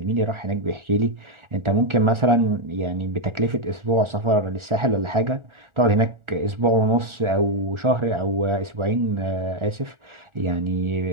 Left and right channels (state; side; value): late; left; 1.4 ms